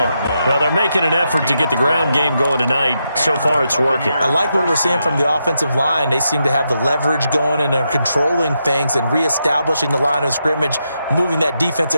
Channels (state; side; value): inverted; both; correlation -0.83